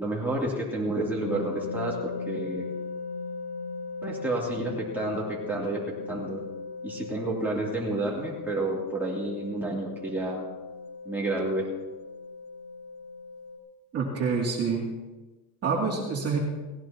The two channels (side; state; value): both; normal; correlation 0.29